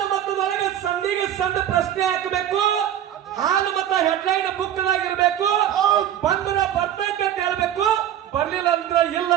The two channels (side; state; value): left; quieter; 10.9 dB